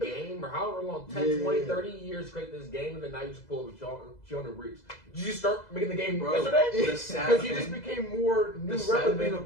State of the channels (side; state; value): right; late; 2.0 ms